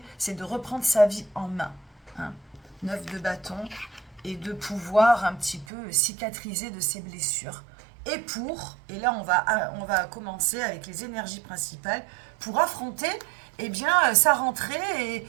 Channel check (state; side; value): drops out; left; at 5.7 s